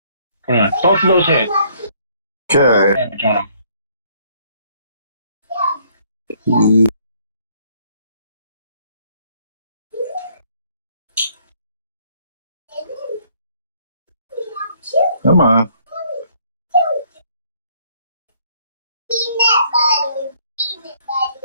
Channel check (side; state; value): both; inverted; correlation -0.65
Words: Come on. Both of those hit. Okay. Damage on them. Come on.